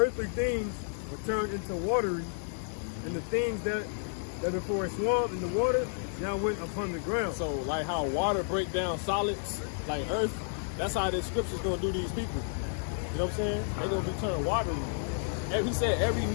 things were turned into watery, and the things that before a swamp in the water now went upon the ground. So like how water break down solids, like earth, that's how this scripture's gonna do these people. You know what I'm saying? They're gonna be turned watery. And he said every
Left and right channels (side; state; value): right; silent; 57 dB below the other